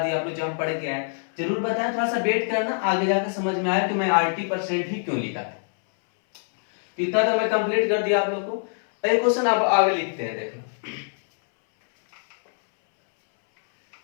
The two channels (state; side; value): silent; right; 62 dB below the other